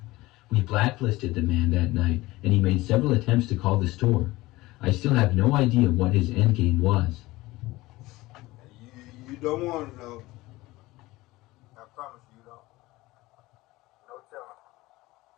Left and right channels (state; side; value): quieter; right; 19.4 dB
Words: We blacklisted the man that night, and he made several attempts to call the store. I still have no idea what his endgame was. You don't want to know. I promise you don't. No telling.